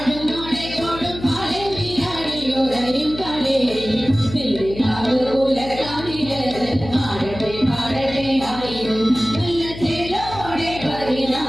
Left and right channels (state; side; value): noise; left; hum, 12 dB below the sound